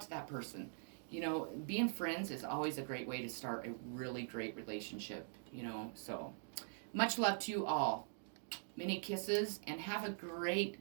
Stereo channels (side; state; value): left; silent; digital silence